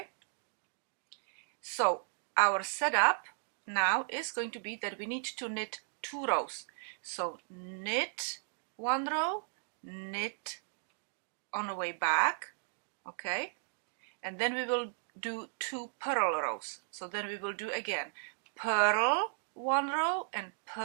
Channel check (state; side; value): silent; left; digital silence